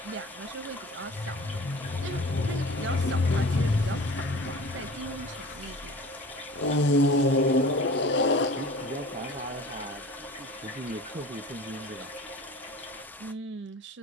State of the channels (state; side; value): normal; both; correlation 0.40